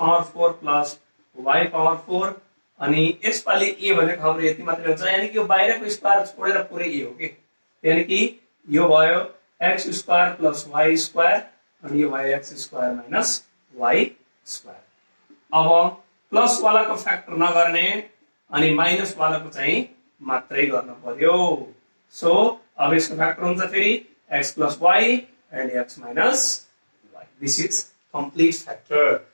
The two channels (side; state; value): both; inverted; correlation -1.00